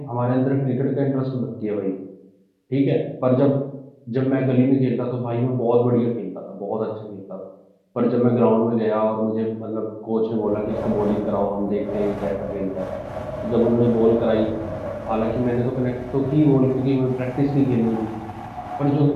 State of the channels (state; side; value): identical; both; correlation 1.00